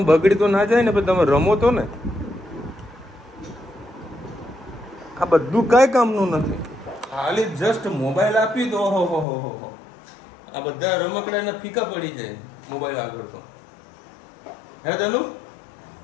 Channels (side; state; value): right; drops out; at 9.2 s